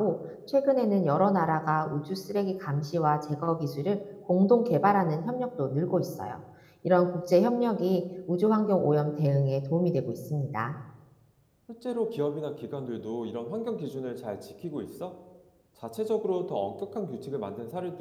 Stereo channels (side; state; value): both; identical; correlation 1.00